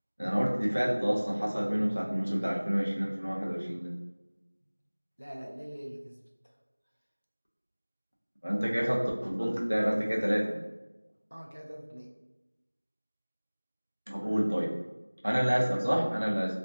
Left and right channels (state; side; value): inverted; both; correlation -1.00